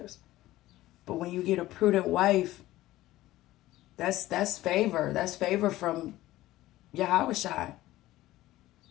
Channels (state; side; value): quieter; right; 16.2 dB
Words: But when you get a prudent wife, that's favor. That's favor from Yahweh Shai.